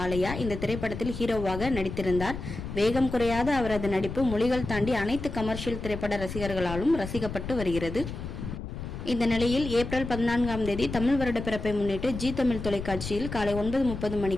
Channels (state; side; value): noise; left; rumble, 8 dB below the sound